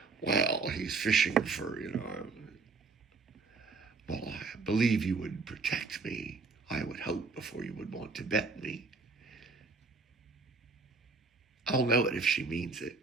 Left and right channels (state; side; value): quieter; left; 4.3 dB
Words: well, he's fishing for, well, I believe you would protect me. I would hope before you would want to bet me. I'll know it if she means it.